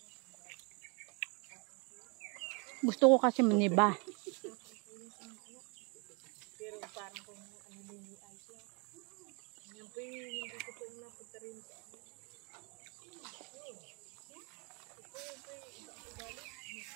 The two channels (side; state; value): left; quieter; 32.2 dB